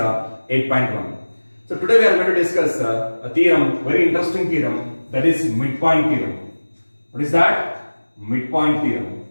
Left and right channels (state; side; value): inverted; both; correlation -1.00